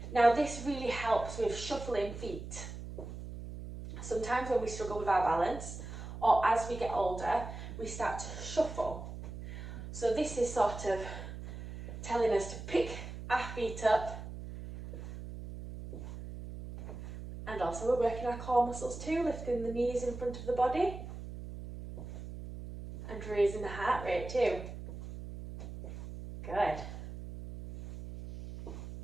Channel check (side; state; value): right; noise; hum, 10 dB below the sound